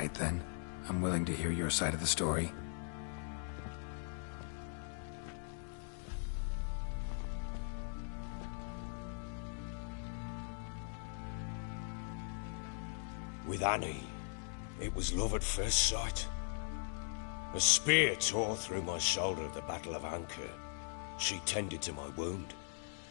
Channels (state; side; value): silent; right; digital silence